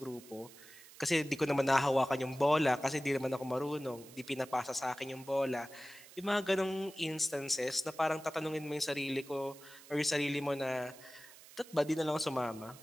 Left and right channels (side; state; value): right; noise; hiss, 20 dB below the sound